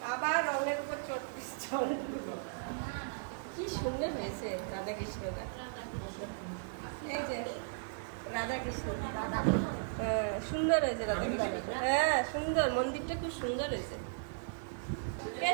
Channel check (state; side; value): silent; left; 54 dB below the other